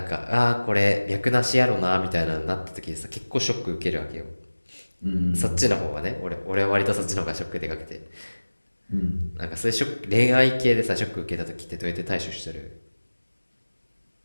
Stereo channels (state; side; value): inverted; both; correlation -1.00